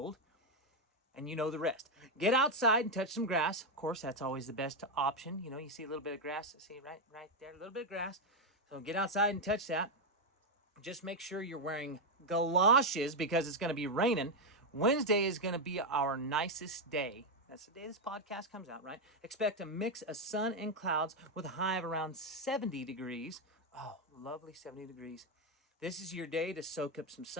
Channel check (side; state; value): both; normal; correlation 0.04